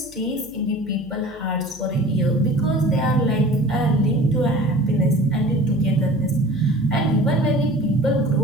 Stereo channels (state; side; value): noise; left; hum, 25 dB below the sound